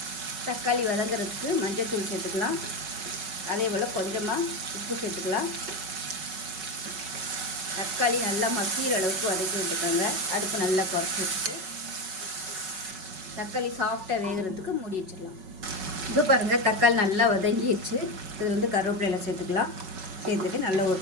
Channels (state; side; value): late; left; 5.3 ms